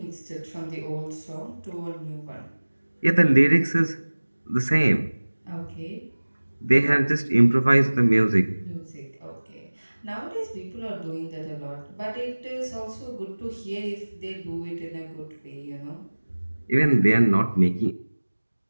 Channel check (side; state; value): both; inverted; correlation -1.00